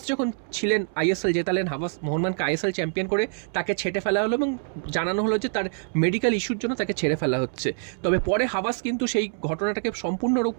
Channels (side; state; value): left; silent; 61 dB below the other